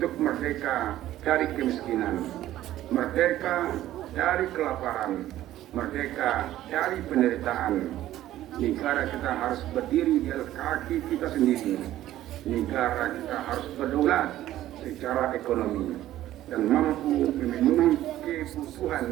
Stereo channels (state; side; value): quieter; left; 13.8 dB